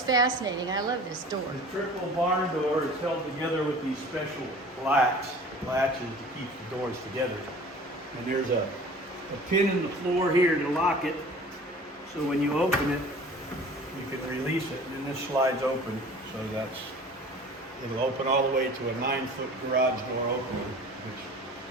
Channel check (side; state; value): both; normal; correlation 0.44